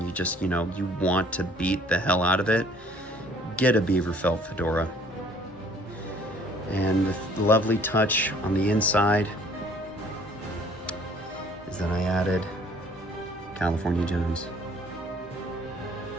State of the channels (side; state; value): both; normal; correlation 0.56